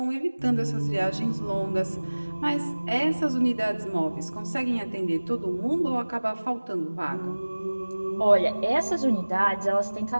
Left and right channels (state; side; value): inverted; both; correlation -1.00